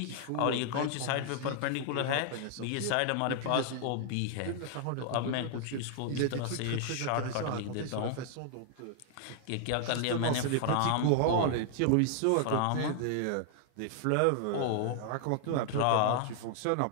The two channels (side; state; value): both; different; correlation 0.00